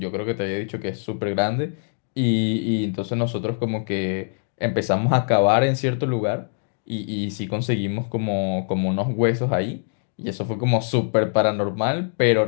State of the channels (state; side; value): silent; right; digital silence